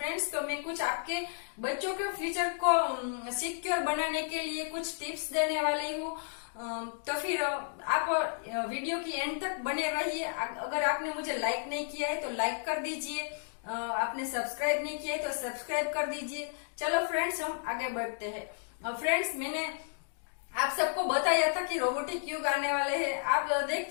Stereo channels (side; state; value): right; silent; digital silence